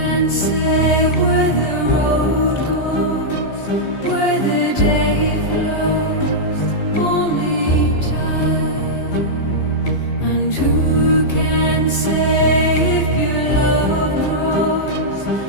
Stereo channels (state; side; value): late; right; 15 ms